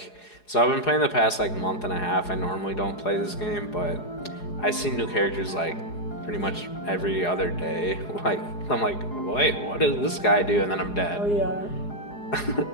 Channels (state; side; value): late; right; 4.8 ms